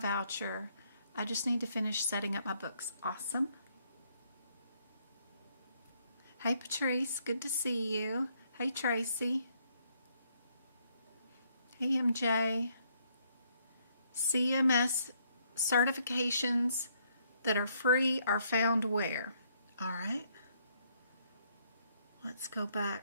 I just need to finish setting up my books. Awesome. Hey, Patrice. Good to see you. Hey, Tracy. Hey, MJ. CMS certifications that are free are found where? All right. Let's go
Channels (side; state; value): both; inverted; correlation -0.71